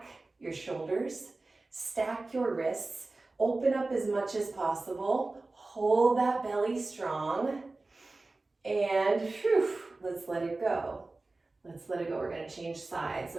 your shoulders, stack your wrists, open up as much as possible, hold that belly strong, and whew, let's let it go. Let's let it go. We're going to change sides.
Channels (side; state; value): left; quieter; 3.3 dB